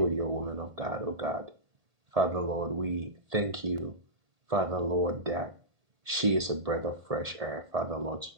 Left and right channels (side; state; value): left; late; 1.8 ms